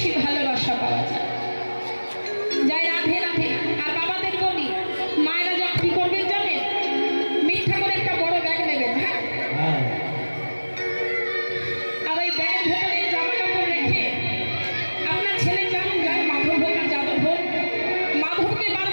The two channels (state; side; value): inverted; both; correlation -1.00